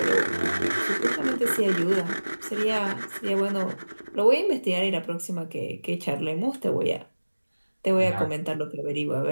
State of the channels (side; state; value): both; inverted; correlation -1.00